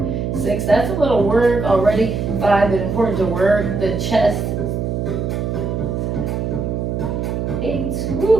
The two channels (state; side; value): noise; right; hum, 2 dB below the sound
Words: 6. That's a little work already. 5, but important to work the chest